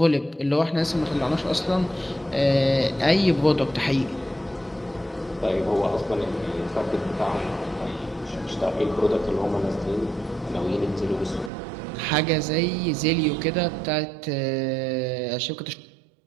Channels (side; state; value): left; drops out; at 11.5 s